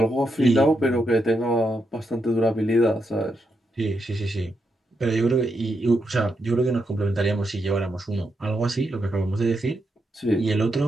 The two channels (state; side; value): normal; both; correlation 0.83